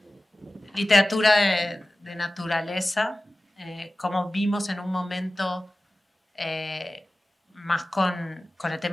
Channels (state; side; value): normal; both; correlation 0.96